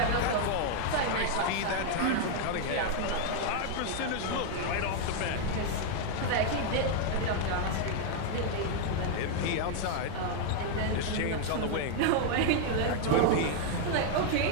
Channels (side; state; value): both; different; correlation 0.00